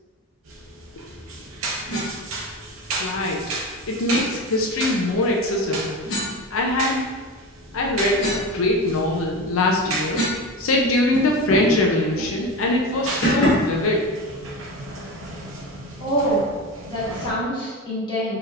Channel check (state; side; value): normal; both; correlation 0.24